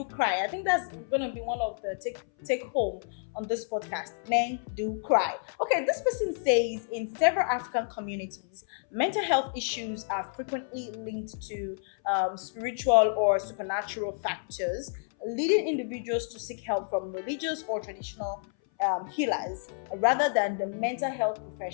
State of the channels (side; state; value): right; silent; 58 dB below the other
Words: cry. I think that's going to be one of the take home on this podcast. Men do cry. Okay, this person says in several African communities, mental health issues are frequently linked to spiritual or supernatural factors, leading individuals to seek help from religious or traditional healers rather than the mental health